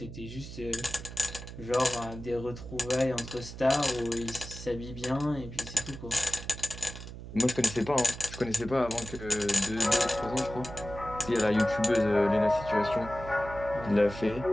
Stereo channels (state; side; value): noise; right; hum, 12 dB below the sound